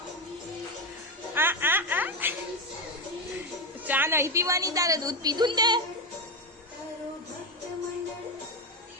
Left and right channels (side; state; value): both; normal; correlation 0.13